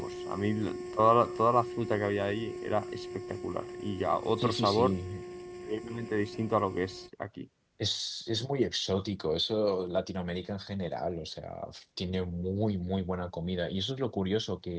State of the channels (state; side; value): identical; both; correlation 1.00